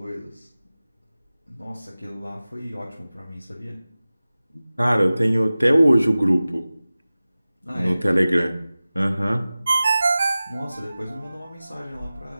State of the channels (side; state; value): both; inverted; correlation -0.97